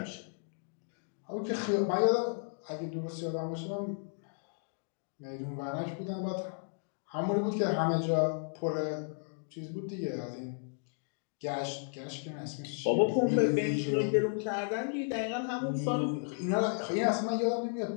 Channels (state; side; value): silent; right; digital silence